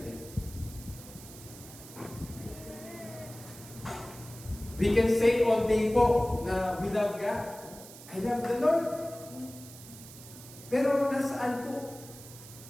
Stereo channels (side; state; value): right; noise; hiss, 17 dB below the sound